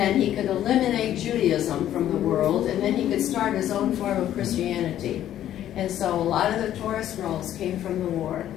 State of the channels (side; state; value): right; quieter; 11.7 dB